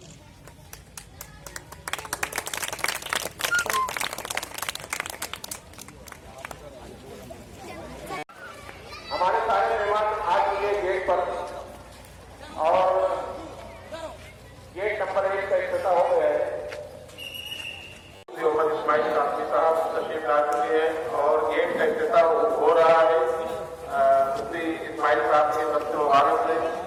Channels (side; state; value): both; identical; correlation 1.00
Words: हमारे सारे मेहमान आ चुके गेट पर और गेट नंबर 1 का इफ्तिताह हो गया है। मोहम्मद इस्माइल कासमी साहब तशरीफ ला चुके हैं और गेट का इफ्तिताह हो रहा है। मुफ्ती इस्माइल साहब के बच्चे मुबारक से